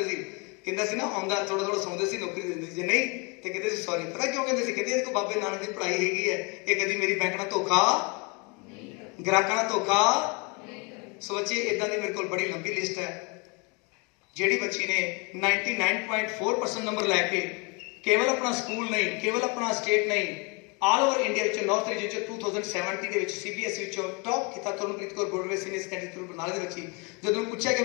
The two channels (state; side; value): quieter; right; 31.1 dB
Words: ਸੀ। ਕਹਿੰਦਾ ਸੀ ਨਾ ਆਉਂਦਾ ਥੋੜਾ ਸੌਂਦੇ ਸੀ, ਨੌਕਰੀ ਦਿੰਦੇ ਸੀ। ਜੇ ਨਹੀਂ ਤੇ ਕਹਿੰਦੇ ਸੀ ਸੌਰੀ। ਪਤਾ ਕਿਉਂ ਕਹਿੰਦੇ ਸੀ? ਕਹਿੰਦੇ ਇਹਦੇ ਕੋਲ ਬਾਬੇ ਨਾਨਕ ਦੀ ਪੜ੍ਹਾਈ ਹੈਗੀ ਹੈ, ਇਹ ਕਦੀ ਮੇਰੀ ਬੈਂਕ ਨਾਲ ਧੋਖਾ, ਗ੍ਰਾਹਕਾਂ ਨਾਲ ਧੋਖਾ। ਸੋ ਬੱਚੇ ਇਦਾਂ ਦੀ ਮੇਰੇ ਕੋਲ ਬੜੀ ਲੰਬੀ ਲਿਸਟ ਹੈ। ਜਿਹੜੀ ਬੱਚੀ ਨੇ 99.4% ਨੰਬਰ ਲੈ ਕੇ ਕੇਵਲ ਆਪਣਾ ਸਕੂਲ ਨਹੀਂ, ਕੇਵਲ ਆਪਣਾ ਸਟੇਟ ਨਹੀਂ, ਆਲ ਓਵਰ ਇੰਡੀਆ ਵਿੱਚ ਨਾਰਥ ਰੀਜਨ ਚ 2070 ਦੇ ਵਿੱਚ CBSE ਵਿੱਚੋਂ ਟੌਪ ਕੀਤਾ। Tarunpreet Kaur Broadway senior secondary school ਬਰਨਾਲੇ ਦੇ ਬੱਚੀ। ਜਦੋਂ ਪੁੱਛਿਆ ਕਿ